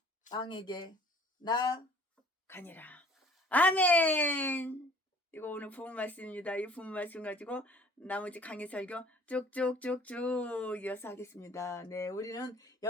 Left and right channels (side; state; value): both; normal; correlation 0.53